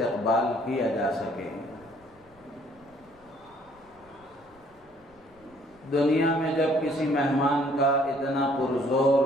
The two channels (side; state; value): left; noise; rumble, 30 dB below the sound